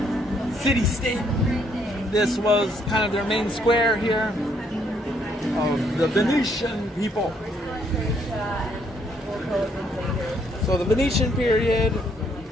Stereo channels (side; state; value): both; normal; correlation 0.70